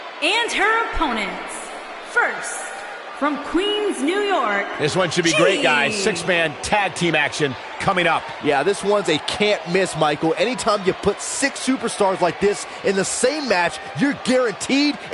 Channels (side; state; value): both; identical; correlation 1.00